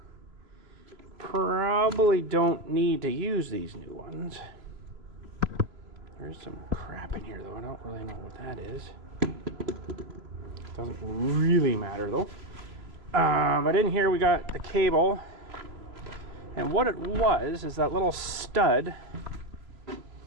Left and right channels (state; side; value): late; left; 3.1 ms